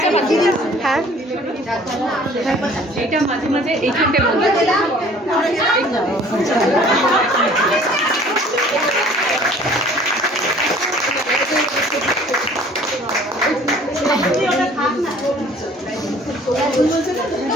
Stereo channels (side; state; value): both; normal; correlation 0.52